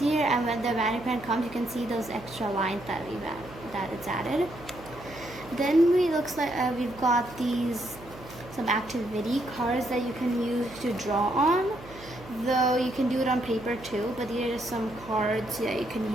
and when the magic pen comes, you can see those extra lines that it's added. Then looks like we've got some activity cards that you can use to draw on. Though you can do it on paper too, but these are just some cards that you can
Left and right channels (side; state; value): right; noise; hum, 17 dB below the sound